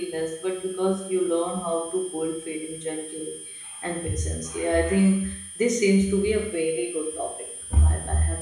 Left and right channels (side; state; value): both; identical; correlation 1.00